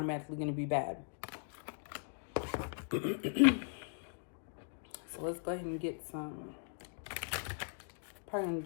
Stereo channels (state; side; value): silent; right; digital silence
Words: going to be bad. So let's go ahead and get some. Probably going